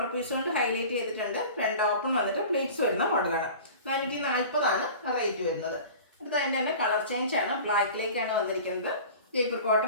പീസ് കൊണ്ട് ഹൈലൈറ്റ് ചെയ്തിട്ടുണ്ട്. ഫ്രണ്ട് ഓപ്പൺ വന്നിട്ട് പ്ലീറ്റ്സ് വരുന്ന മോഡലാണ്. 440 റേറ്റ് വരുന്നത്. അടുത്ത അതിൻ്റെ തന്നെ കളർ ചേഞ്ച് ആണ്. ബ്ലാക്കിലേക്കാണ് വന്നിരിക്കുന്നത്. Jaipur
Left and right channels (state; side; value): inverted; both; correlation -0.39